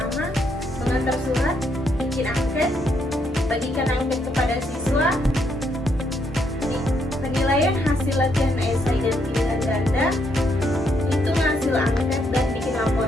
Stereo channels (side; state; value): both; normal; correlation 0.75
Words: mengantar surat, bikin angket, bagikan angket kepada siswa, penilaian hasil latihan esai dan pilihan ganda, hitung hasil angket dan bikin